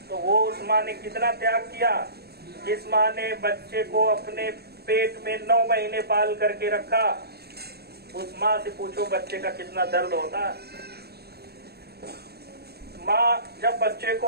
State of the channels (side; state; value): left; late; 0.47 ms